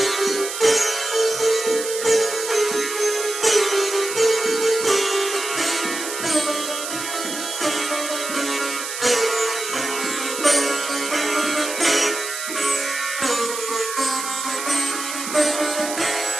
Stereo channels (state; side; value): noise; right; hiss, 6 dB below the sound